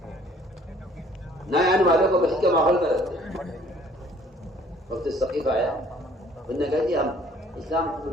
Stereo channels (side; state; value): both; normal; correlation 0.57